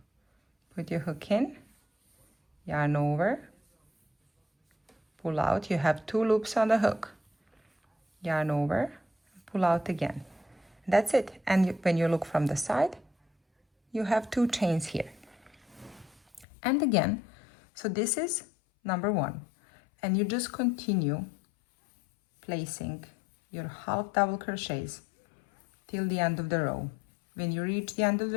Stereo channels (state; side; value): drops out; right; at 16.4 s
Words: put your hook in, yarn over, pull out. You have 2 loops on the hook, yarn over, pull out again. That's it. And when you look from the side, you have 2 chains here. And again, so this is number 1, and you just continue placing your half double crochets till the end of the row. When you reach the end of